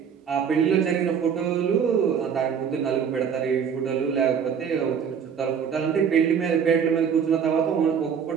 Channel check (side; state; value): left; quieter; 7.3 dB